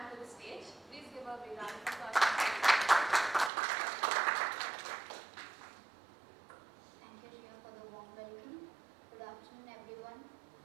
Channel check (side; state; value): left; drops out; at 3.5 s